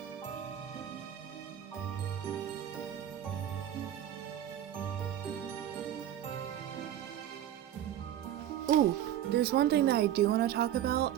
Ooh, there's one thing that I do want to talk about.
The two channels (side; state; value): left; quieter; 11.3 dB